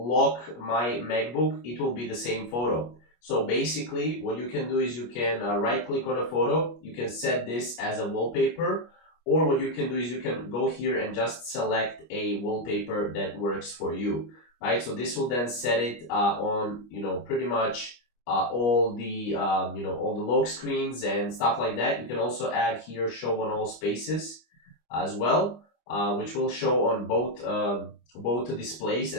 my MacBook, it will be the same photo. So basically what you can do is you can right click on a photo, you can set this as a wallpaper, or what you can do is you can go here and just select a wallpaper that works for you, right? So this will then set it on, pretty much all the, all the lock screens and stuff like that. You can also add here show on all spaces as well, which will show on both displays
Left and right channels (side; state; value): right; late; 25 ms